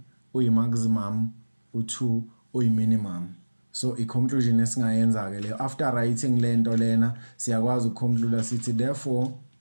uyi maximum, u2 uyi minimum. So i-conclusion esingayenza ke leyo after writing lento lena siyakwazi ukuconclude sithi therefore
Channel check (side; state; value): both; inverted; correlation -1.00